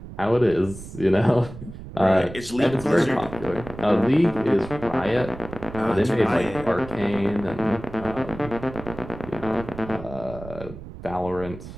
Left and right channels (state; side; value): noise; right; rumble, 13 dB below the sound